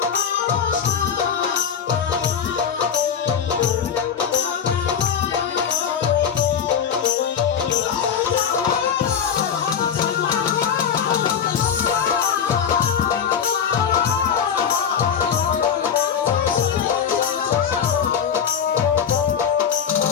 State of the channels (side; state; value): right; quieter; 7.7 dB